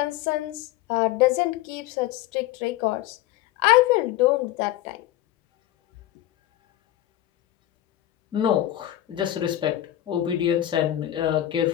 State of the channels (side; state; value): right; quieter; 13.8 dB